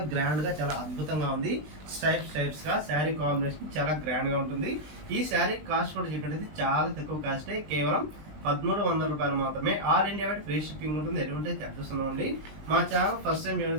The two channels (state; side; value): late; left; 20 ms